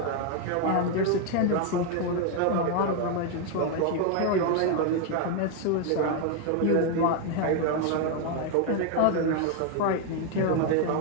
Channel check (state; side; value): different; both; correlation 0.01